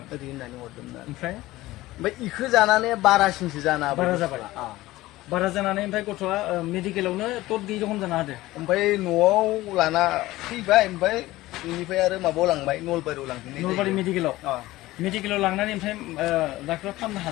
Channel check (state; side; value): quieter; right; 17.6 dB